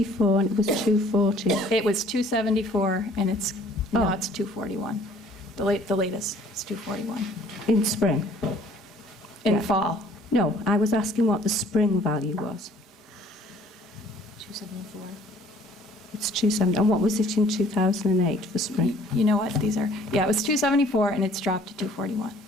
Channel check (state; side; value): normal; both; correlation 0.56